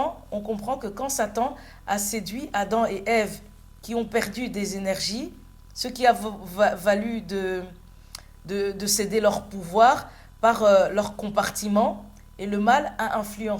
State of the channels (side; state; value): both; identical; correlation 1.00